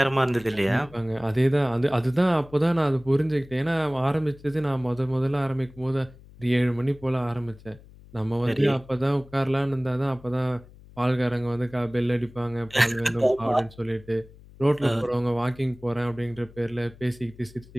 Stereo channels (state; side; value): noise; left; hum, 22 dB below the sound